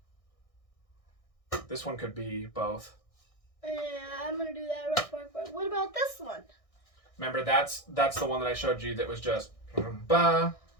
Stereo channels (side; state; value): right; late; 1.6 ms